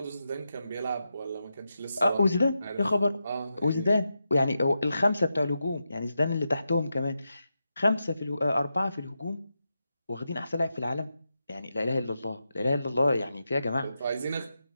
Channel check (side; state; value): both; inverted; correlation -0.88